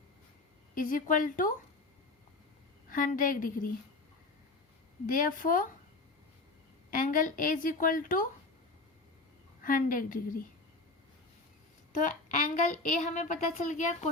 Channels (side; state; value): right; quieter; 3.3 dB